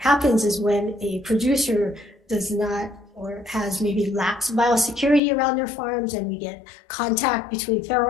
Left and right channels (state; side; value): drops out; right; at 5.2 s